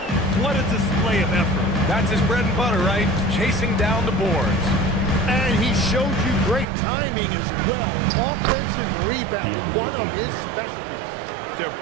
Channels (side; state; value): left; drops out; at 6.7 s